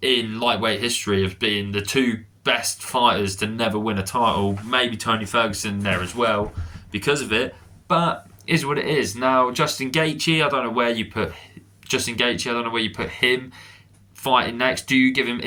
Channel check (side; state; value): both; identical; correlation 1.00